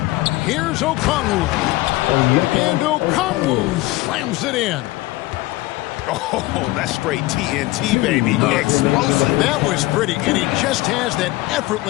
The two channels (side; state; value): right; quieter; 19.1 dB